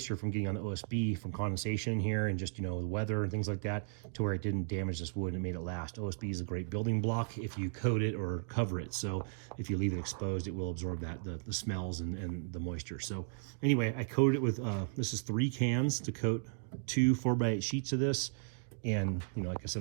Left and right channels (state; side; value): silent; left; digital silence